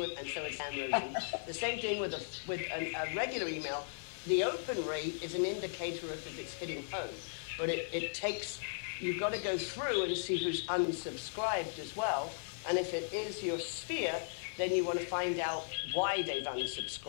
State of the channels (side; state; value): right; silent; digital silence